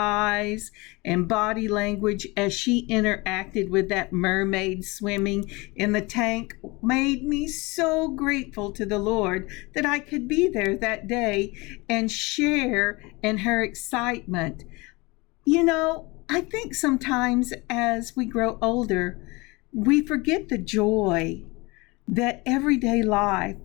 and body language as she interacted with that mermaid swimming in the tank made me so grateful to the Lord that I could be there that day and share in her excitement. You know, I think sometimes as we grow older, we forget the joy that everyday life,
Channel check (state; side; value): quieter; right; 24.7 dB